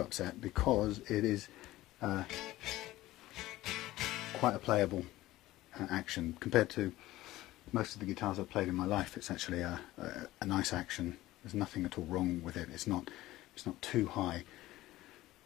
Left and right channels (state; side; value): quieter; right; 16.7 dB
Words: because it is quite a playable action compared to most of the guitars I've played in my life. It's actually a nice action. There's nothing at all wrong with it. It's not too high.